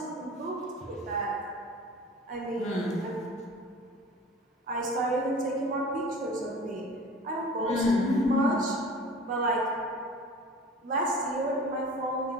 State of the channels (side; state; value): both; normal; correlation 0.40